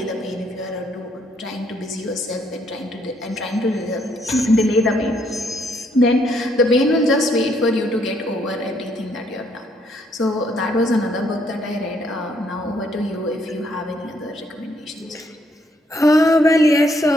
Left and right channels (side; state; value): both; normal; correlation 0.70